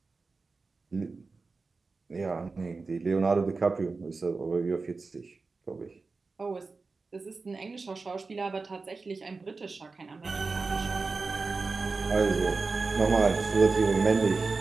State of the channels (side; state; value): left; quieter; 4.1 dB